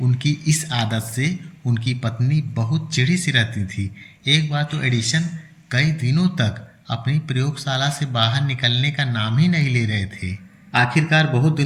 उनकी इस आदत से उनकी पत्नी बहुत चिढ़ी सी रहती थी। एक बार तो एडिसन कई दिनों तक अपनी प्रयोगशाला से बाहर निकलने का नाम ही नहीं ले रहे थे। आखिरकार बहुत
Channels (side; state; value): both; identical; correlation 1.00